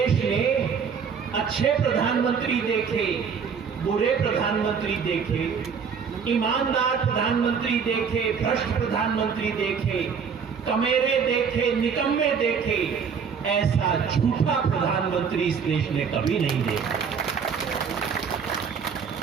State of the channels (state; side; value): quieter; left; 6.4 dB